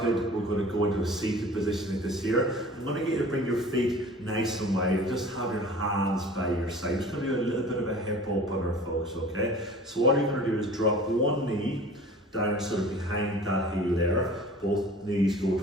we're going to go into a seated position like this here. I'm going to get you to bring your feet nice and wide and just have your hands by your side. It's going to be a little bit of a hip opener, folks, okay? So all you're going to do is drop one knee down sort of behind that heel there. Both knees go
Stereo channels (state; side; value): normal; both; correlation 0.44